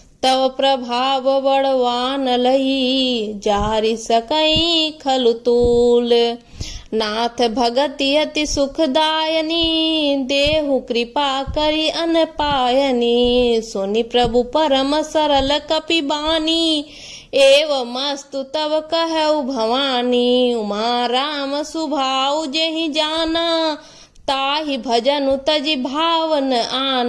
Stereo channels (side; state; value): both; identical; correlation 1.00